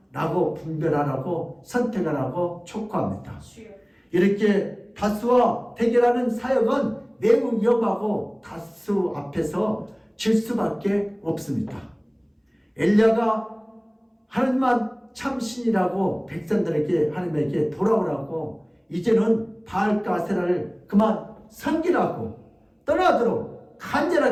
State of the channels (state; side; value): identical; both; correlation 1.00